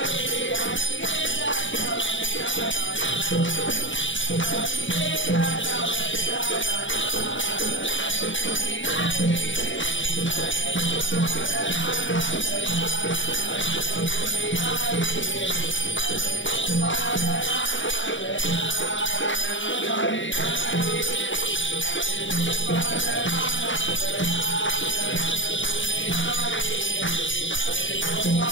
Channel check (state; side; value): late; right; 0.56 ms